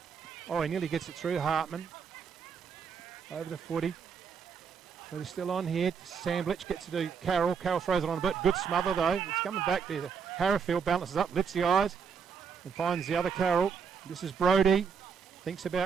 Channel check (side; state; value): left; quieter; 6.4 dB